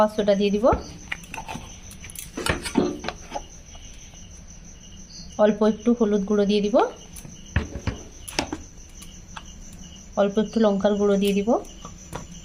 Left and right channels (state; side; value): identical; both; correlation 1.00